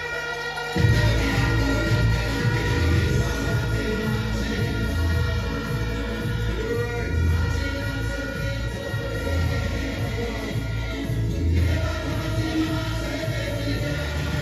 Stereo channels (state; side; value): identical; both; correlation 1.00